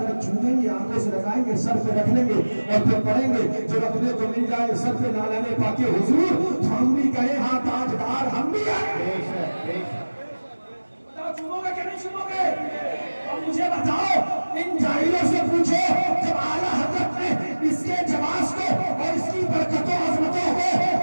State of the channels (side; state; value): both; inverted; correlation -1.00